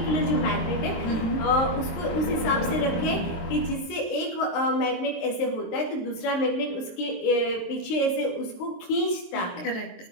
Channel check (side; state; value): right; late; 23 ms